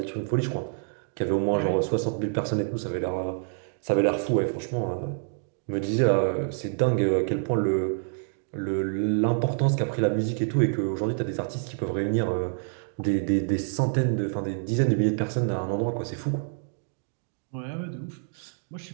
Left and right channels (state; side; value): silent; left; digital silence